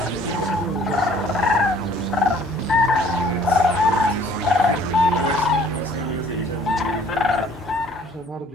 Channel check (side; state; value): both; normal; correlation 0.56